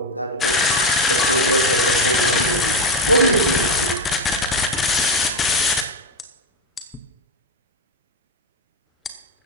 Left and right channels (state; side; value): normal; both; correlation 0.13